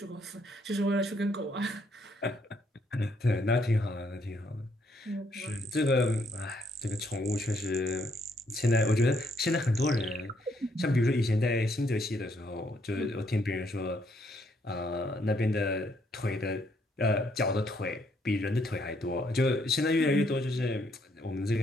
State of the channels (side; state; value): both; normal; correlation 0.71